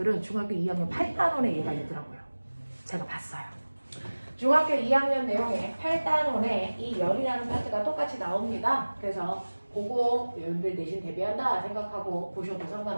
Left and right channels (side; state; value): both; inverted; correlation -1.00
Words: 중학교 2학년 8단원에 얘가 있더라고요. 제가 봤어요. 중학교 2학년 내용에 8단원에 이 열이라는 파트가 똑같이 나옵니다. 그래서 그거 여러분들 내신 대비한다 생각하고 보셔도